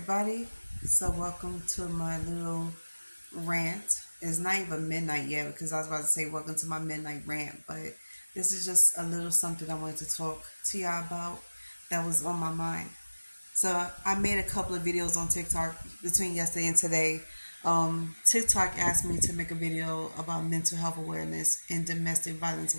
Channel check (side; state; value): both; inverted; correlation -1.00